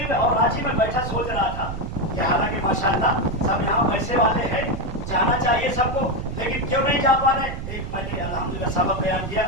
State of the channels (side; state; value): right; noise; rumble, 7 dB below the sound